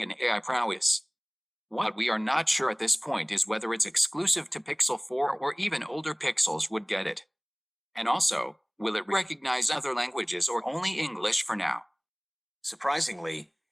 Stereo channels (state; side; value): identical; both; correlation 1.00